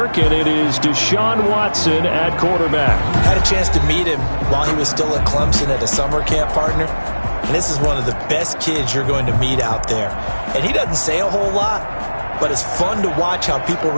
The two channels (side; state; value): both; inverted; correlation -1.00